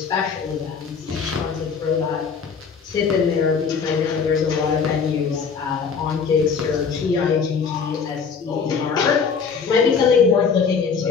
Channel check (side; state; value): right; quieter; 5.9 dB